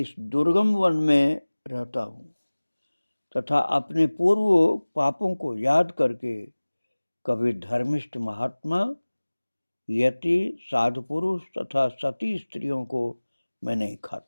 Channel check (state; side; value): inverted; both; correlation -1.00